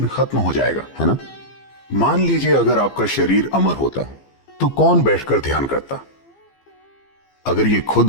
खत्म हो जाएगा, है ना? मान लीजिए अगर आपका शरीर अमर होता तो कौन बैठकर ध्यान करता? अगर ये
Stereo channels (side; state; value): right; late; 15 ms